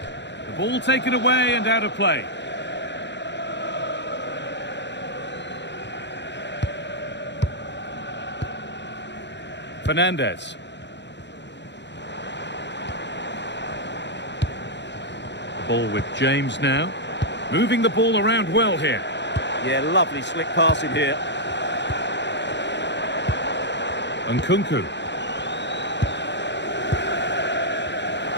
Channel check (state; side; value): late; right; 0.51 ms